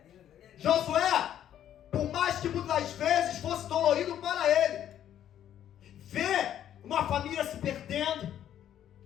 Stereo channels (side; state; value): right; quieter; 10.7 dB